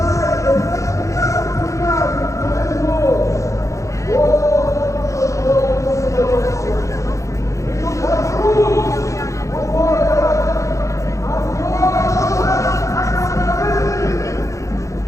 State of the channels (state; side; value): late; right; 0.15 ms